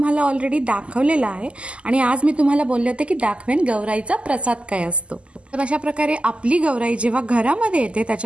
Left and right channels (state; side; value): late; left; 0.055 ms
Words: ऑलरेडी दाखवलेलं आहे आणि आज मी तुम्हाला बोलले होते की दाखवेन गौराईचा प्रसाद काय असतो। तर अशा प्रकारे आपली गौराई जेव्हा घरामध्ये येते